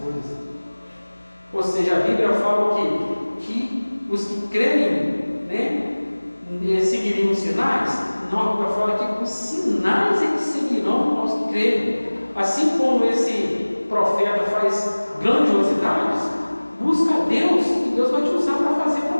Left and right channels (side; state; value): both; inverted; correlation -1.00